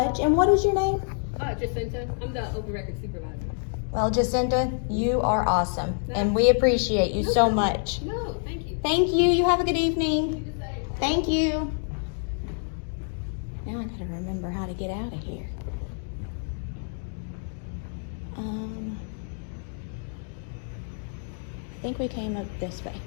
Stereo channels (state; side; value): silent; right; 57 dB below the other